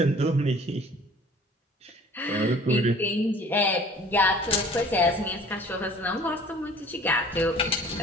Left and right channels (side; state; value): both; normal; correlation 0.50